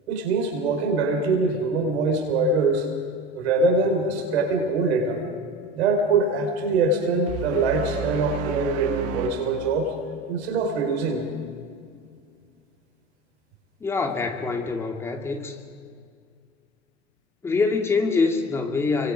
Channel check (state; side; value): normal; both; correlation 0.34